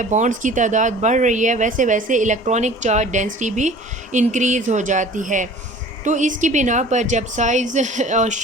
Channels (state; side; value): normal; both; correlation 0.45